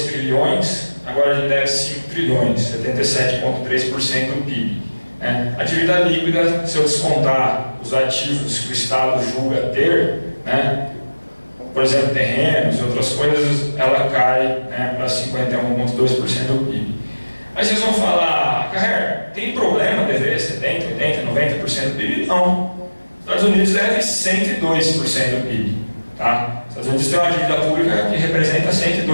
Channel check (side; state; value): both; inverted; correlation -1.00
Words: trilhões, agora a gente deve 5 trilhões, 77,3% do PIB. A dívida líquida, se eu descontar os ativos que o Estado julga ter, né, por exemplo, terrenos e outras coisas, ela cai, né, para 51,2% do PIB. Aí vocês vão falar, Carrer, tem problema dever 70%, 80%, 90% do PIB? Não. Os Estados Unidos devem 102% do PIB. Tá? Os Estados Unidos têm uma dívida pública que representa